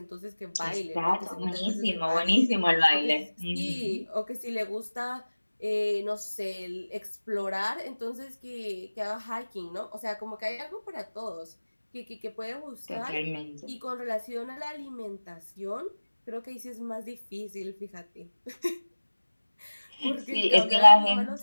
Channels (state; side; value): inverted; both; correlation -1.00